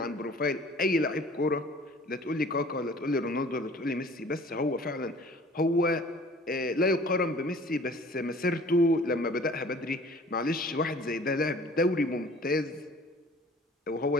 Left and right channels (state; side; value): normal; both; correlation 0.49